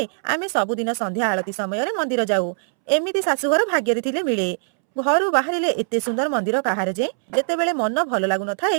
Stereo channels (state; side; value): silent; left; 64 dB below the other